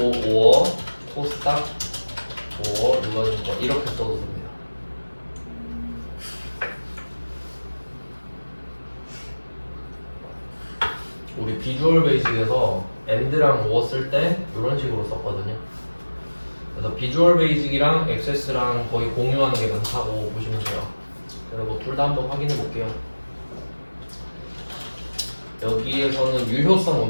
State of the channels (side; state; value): both; inverted; correlation -1.00